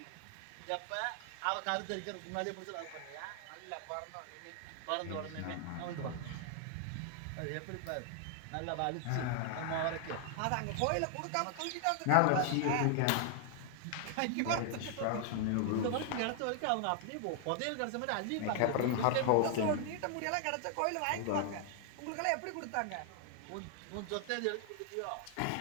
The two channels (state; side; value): different; both; correlation 0.00